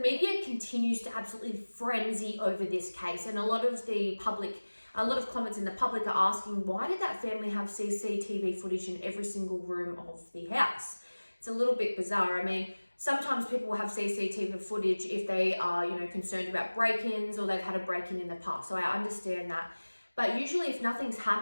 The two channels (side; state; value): both; inverted; correlation -1.00